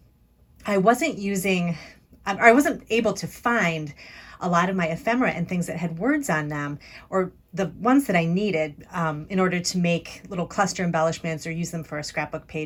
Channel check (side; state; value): both; identical; correlation 1.00